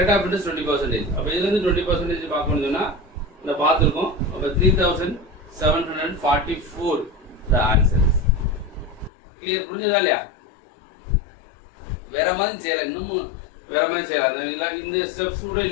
ஆஃப் இன்ட்ரெஸ்ட் 20%. அப்ப இதுல இருந்து 20% பார்க்கணும்னு சொன்னா இந்த பார்த்துருக்கோம். அப்ப 3,744 the answers. கிளியர்? புரிஞ்சதா இல்லையா? வேற மாதிரி செய்யலாம், இன்னமும் வேற மாதிரி செய்யலாம். இந்த ஸ்டெப்ஸ் கூட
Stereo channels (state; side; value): drops out; right; at 9.1 s